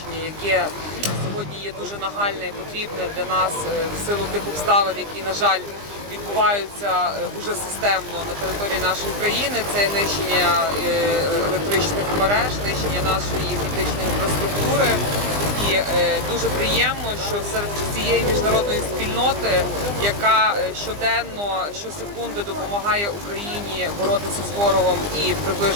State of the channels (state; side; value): late; left; 20 ms